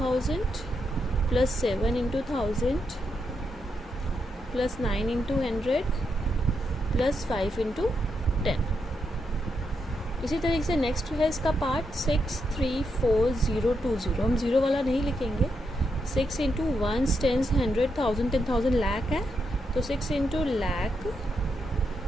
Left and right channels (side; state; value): both; normal; correlation 0.82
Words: + 7 × 1000 + 9 × 100 + 5 × 10। इसी तरीके से नेक्स्ट है इसका पार्ट 634020। हम 0 वाला नहीं लिखेंगे। 6 × 1s, 10s, 100, 1000, 10,000 लाख है, तो 6 × लाख,